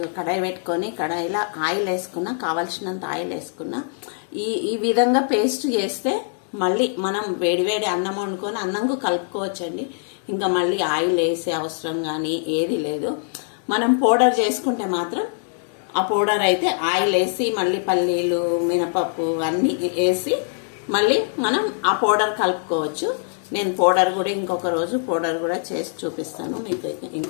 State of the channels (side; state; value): right; silent; digital silence